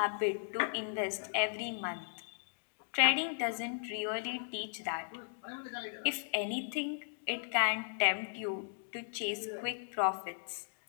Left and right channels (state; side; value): silent; right; digital silence